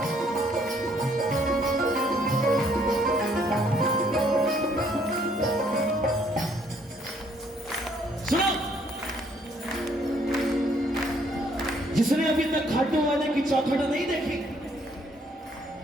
जिसने अभी तक खाटू वाले की चौखट नहीं देखी,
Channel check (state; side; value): normal; both; correlation 0.66